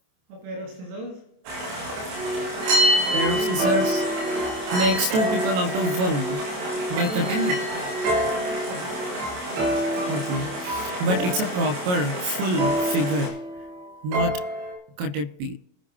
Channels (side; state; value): left; late; 27 ms